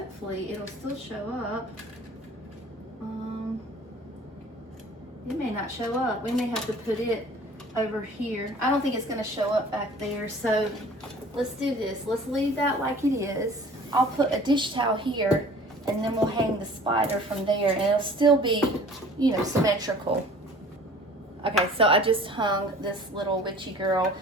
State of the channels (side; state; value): both; normal; correlation 0.48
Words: it'll still show up. It may not show up. We may have to put it over here. I don't think it's gonna show up back there, so let's do this. Let's leave that like it is. I'll put a dish towel here, and then we'll hang the spider from there, and it'll still be, you know, symmetrical. Okay, so I just hung this little witchy girl.